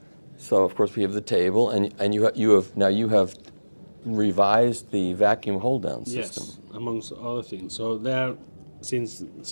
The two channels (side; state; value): both; inverted; correlation -1.00